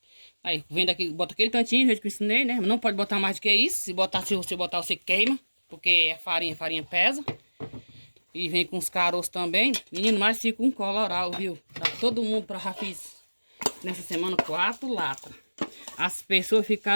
Aí vem daqui, bota aquele tantinho, do jeito que eu ensinei, né? Não pode botar mais do que isso. Se você botar, você queima, porque é farinha pesa. E vem com os caroços também. Menino, mas fica um coloral, viu? Tá todo mundo para já fiz nessa semana 4 latas. As pessoas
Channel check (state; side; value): inverted; both; correlation -1.00